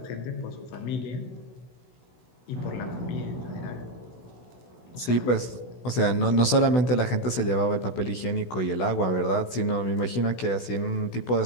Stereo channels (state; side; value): late; right; 16 ms